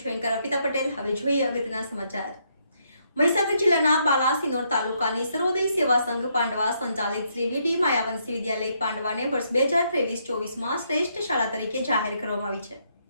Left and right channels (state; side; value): inverted; both; correlation -0.75